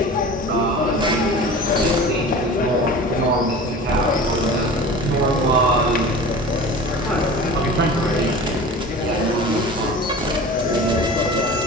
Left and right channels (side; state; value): both; normal; correlation 0.37